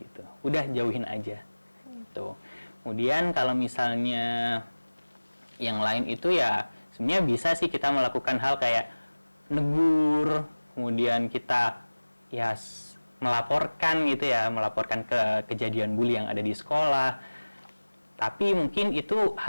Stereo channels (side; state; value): both; inverted; correlation -1.00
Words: gitu. Udah jauhin aja. Gitu. Kemudian kalau misalnya yang lain itu ya sebenarnya bisa sih kita melakukan hal kayak negur, kemudian kita ya melaporkan gitu ya, melaporkan ke kejadian bully yang ada di sekolah. Tapi mungkin itu